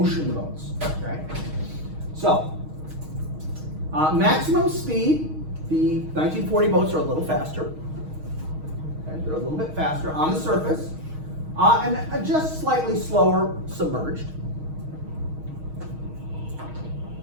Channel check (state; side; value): late; left; 6.4 ms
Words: boats. Okay. So maximum speed, the 1940 boats are a little faster. Okay, they're a little bit faster on the surface, and just slightly slower submerged.